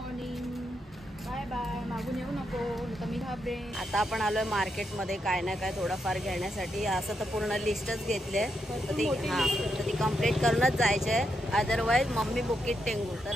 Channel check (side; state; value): both; normal; correlation 0.82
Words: बाय बाय, मागून येऊ नको तर मी घाबरे। आता आपण आलोय मार्केट मध्ये काय ना काय थोडंफार घेण्यासाठी। असं तर पूर्ण लिस्टच घेतली तर ती कंप्लीट करूनच जायचंय, अदरवाईज मम्मी बुकीट टेंगू। तर